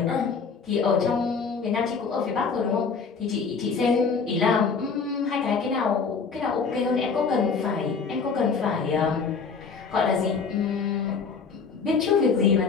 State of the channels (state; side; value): quieter; right; 5.3 dB